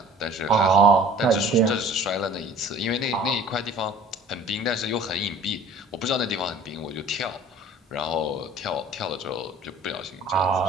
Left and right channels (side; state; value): both; normal; correlation 0.49